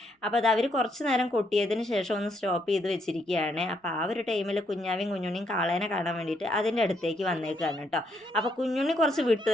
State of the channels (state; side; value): normal; both; correlation 0.74